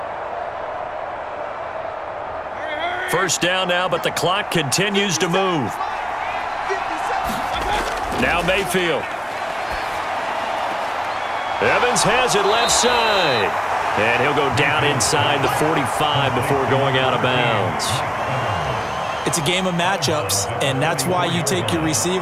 First down now, but the clock continues to move. Now Mayfield. Evans has it left side. And he'll go down inside the 45 before going out of bounds. It's a game of matchups, and that's why you take your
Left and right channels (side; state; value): both; identical; correlation 1.00